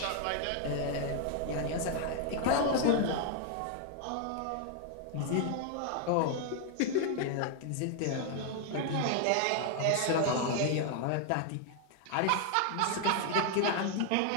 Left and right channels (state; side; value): different; both; correlation 0.00